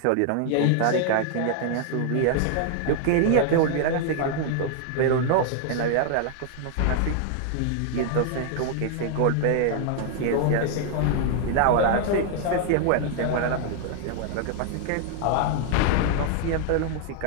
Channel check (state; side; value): different; both; correlation 0.00